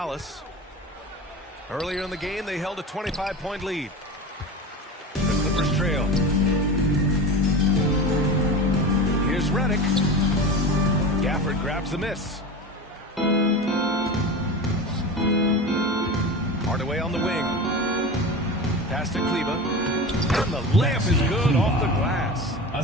Earlier in the game, they held a 25-point lead. The Clippers trail. Here's Redick. Gafford grabs the miss. Hardaway on the wing. Pass to Kleber. And the layup is good off the glass.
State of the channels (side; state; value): both; normal; correlation 0.29